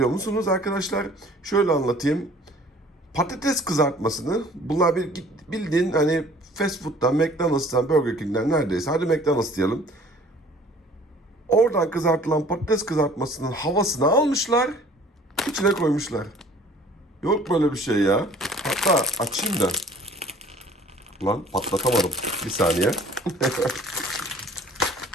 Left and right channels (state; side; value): normal; both; correlation 0.52